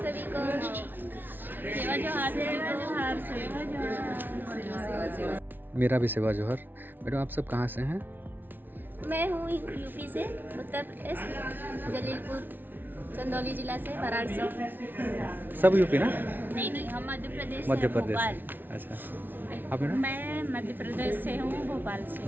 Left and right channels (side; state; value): left; late; 0.092 ms